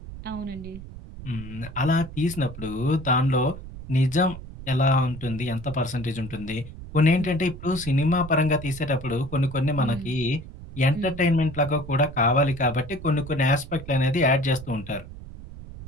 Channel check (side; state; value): right; noise; rumble, 13 dB below the sound